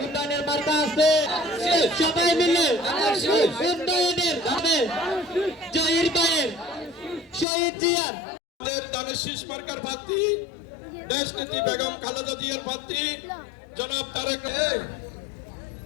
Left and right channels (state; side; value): drops out; right; at 7.5 s